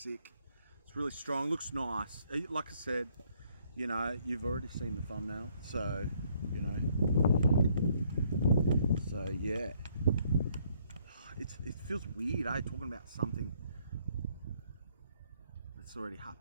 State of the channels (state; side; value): inverted; both; correlation -0.67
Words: It's really strong. Looks nice. Like I said, you know, you've already seen the thumbnail, so you know. So yeah, it feels weird, eh? Talking about something that's already